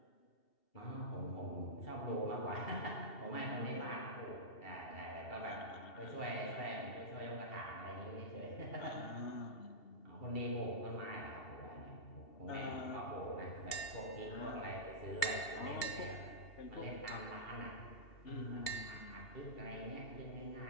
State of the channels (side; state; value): right; late; 2.7 ms